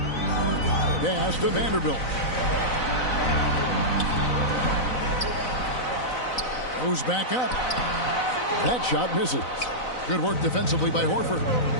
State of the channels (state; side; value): late; right; 4.0 ms